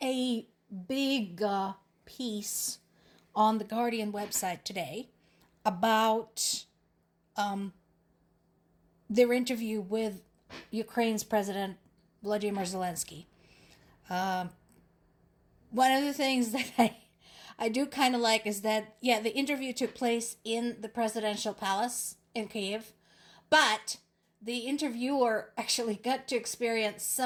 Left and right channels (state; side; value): identical; both; correlation 1.00